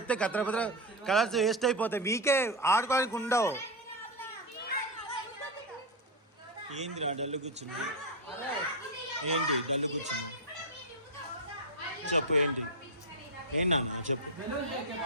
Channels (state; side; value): normal; both; correlation 0.07